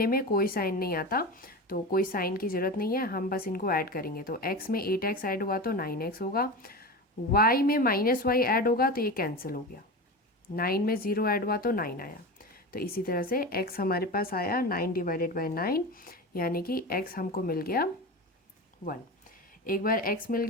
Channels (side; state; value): both; normal; correlation 0.26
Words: में कोई साइन नहीं आता, तो कोई साइन की ज़रूरत नहीं है, हम बस इनको ऐड करेंगे। तो x में 8x ऐड हुआ तो 9x होगा, y में -y ऐड होगा तो ये कैंसिल हो गया, 9 में 0 ऐड हुआ तो 9 आया। तो इसी तरह से x हमारे पास आया 9 डिवाइडेड बाई 9, यानी कि x हमको मिल गया 1। एक बार x मिल